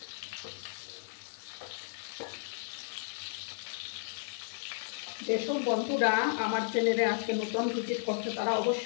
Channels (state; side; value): silent; right; digital silence